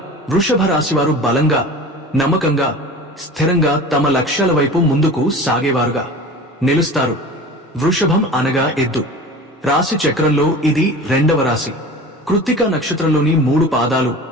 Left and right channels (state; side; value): normal; both; correlation 0.36